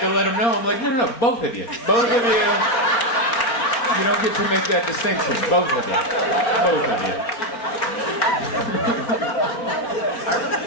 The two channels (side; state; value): right; late; 4.4 ms